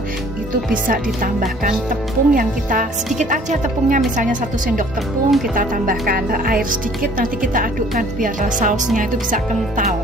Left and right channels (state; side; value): normal; both; correlation 0.54